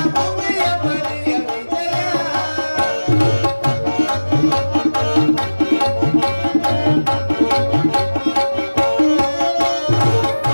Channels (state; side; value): inverted; both; correlation -1.00